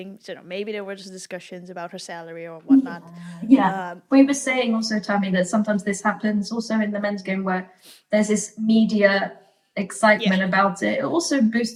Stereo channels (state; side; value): identical; both; correlation 1.00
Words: So maybe there were just discussions about her salary or whatnot. We were saying also, Tammy, that sometimes this happens also in the men's game where there's this media excitement about it. It also